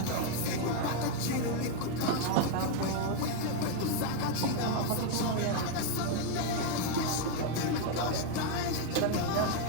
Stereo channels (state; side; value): different; both; correlation 0.01